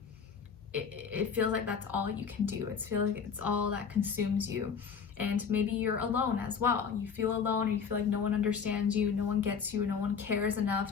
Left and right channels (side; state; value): right; quieter; 6.4 dB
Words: it feels like that's all you can do. It feels like it's all that consumes you. And maybe you're alone as well. You feel alone, or you feel like no one understands you, no one gets you, no one cares